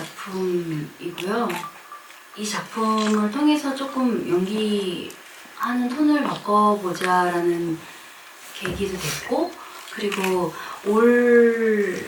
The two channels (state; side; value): identical; both; correlation 1.00